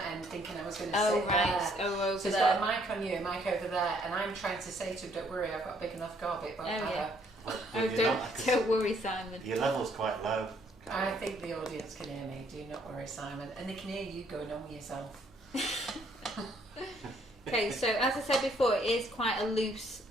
end, thinking I was going to sit there. Oh, over So he's there. got a mic on you, a mic over there, and I'm trying to say to him, "Don't worry, I've got a big enough gob. It won't matter." Yeah. Well, Oh, you're not, 'cause don't worry, Simon. your level's quite low. I think the audience can hear me. Do not worry, Simon, and they can hear you going on with yourself. Okay, so as I said before, it is quite a loose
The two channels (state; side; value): normal; both; correlation 0.66